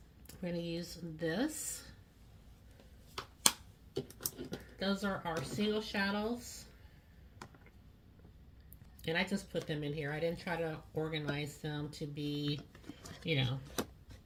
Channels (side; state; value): both; identical; correlation 1.00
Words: going to use this. Those are our single shadows. And I just put them in here. I didn't try to organize them to be, you know,